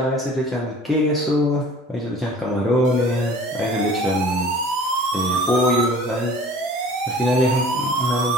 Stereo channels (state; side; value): normal; both; correlation 0.46